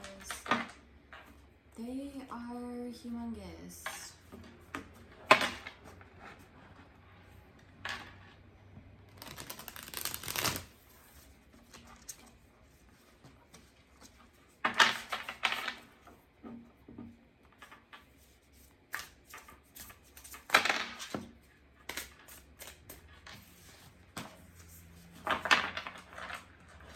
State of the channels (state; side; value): identical; both; correlation 1.00